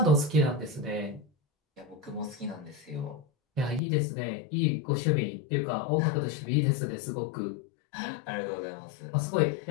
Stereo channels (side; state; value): right; drops out; at 3.8 s